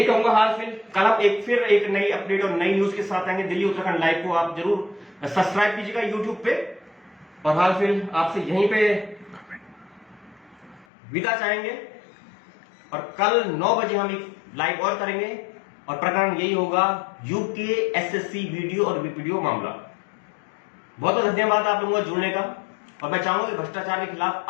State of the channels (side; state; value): right; drops out; at 10.9 s